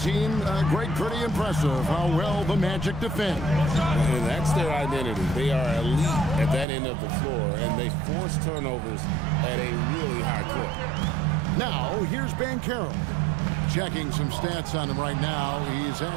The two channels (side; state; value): left; drops out; at 6.7 s